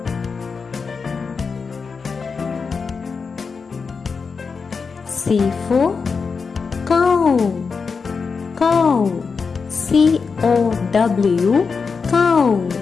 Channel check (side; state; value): right; quieter; 5.2 dB